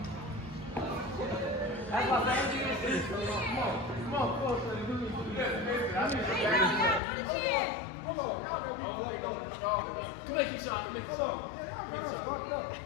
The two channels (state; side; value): drops out; right; at 7.0 s